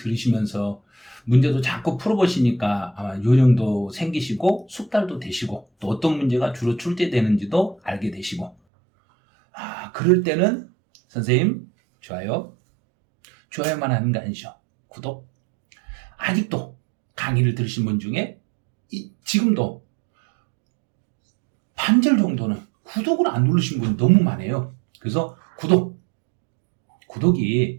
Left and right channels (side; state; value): left; drops out; at 8.6 s